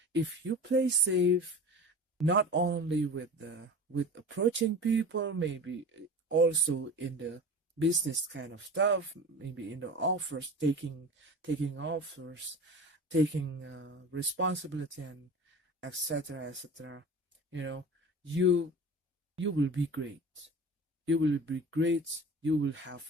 if you play safe, not only with approaching people, maybe also in the business kind of stuff, maybe in the offers, taking offers, taking responsibility, and etc etc, you know you you will be great. You will be great. You will have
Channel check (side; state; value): both; normal; correlation 0.35